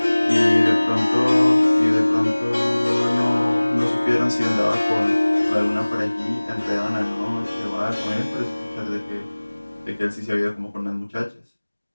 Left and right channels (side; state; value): both; inverted; correlation -1.00